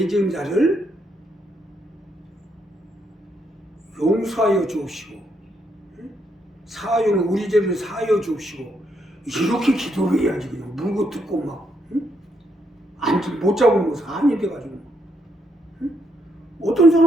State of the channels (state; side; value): normal; both; correlation 0.76